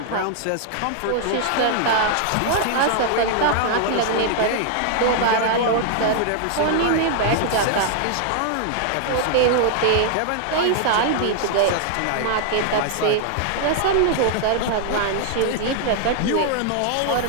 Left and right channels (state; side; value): different; both; correlation 0.00